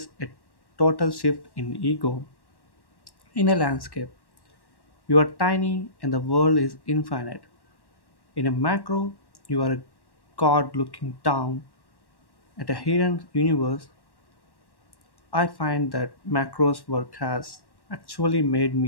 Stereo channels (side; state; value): right; late; 1.1 ms